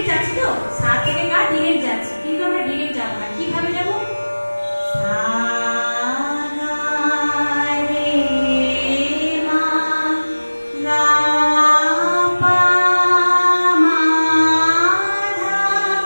যাচ্ছি, তো সা থেকে গা ডিরেক্ট যাচ্ছি, কিন্তু আমরা ডিরেক্ট যাব না। কিভাবে যাব? সা গা রে মা গা পা মা ধা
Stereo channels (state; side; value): inverted; both; correlation -1.00